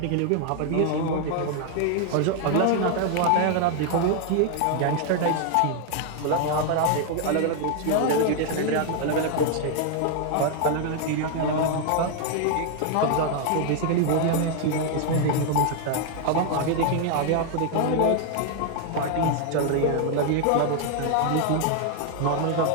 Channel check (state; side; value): different; both; correlation 0.00